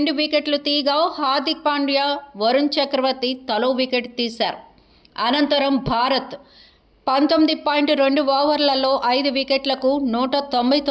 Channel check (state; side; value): identical; both; correlation 1.00